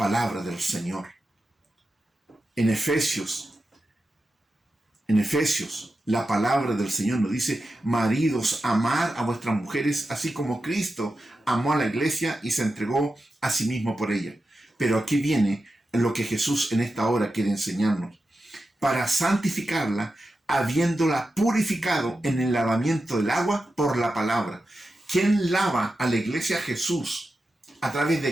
del Señor. En Efesios, la palabra del Señor nos dice, maridos, amad a vuestras mujeres, así como Cristo amó a la iglesia y se entregó a sí mismo por ella. Pero aquí viene lo que Jesús en esta hora quiere enseñarnos. Para santificarla, habiéndola purificado en el lavamiento del agua por la palabra. ¿Quién lava a la iglesia? Jesús. ¿A través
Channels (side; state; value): both; normal; correlation 0.91